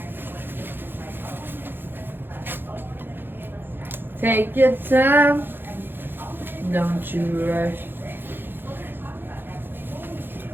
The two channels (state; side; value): late; left; 0.10 ms